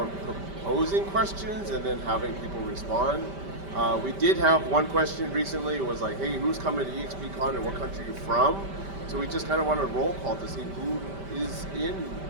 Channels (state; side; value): late; left; 5.1 ms